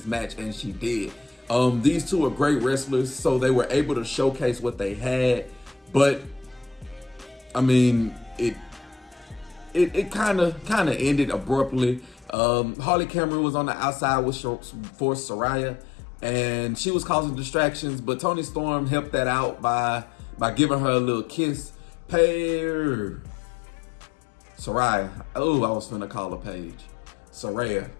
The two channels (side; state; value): right; drops out; at 12.4 s